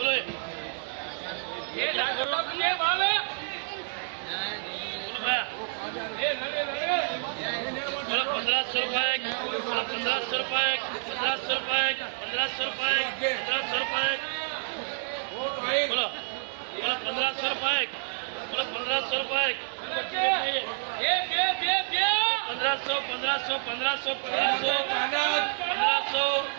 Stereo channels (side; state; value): left; silent; digital silence